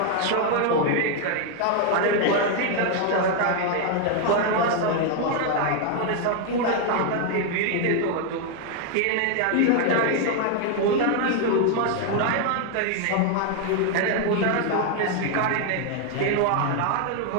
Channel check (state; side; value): different; both; correlation 0.00